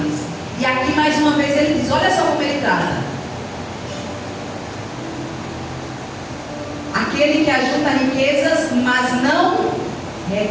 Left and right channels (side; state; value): both; identical; correlation 1.00